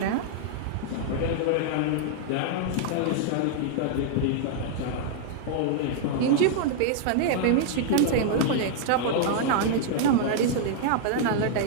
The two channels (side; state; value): both; different; correlation -0.01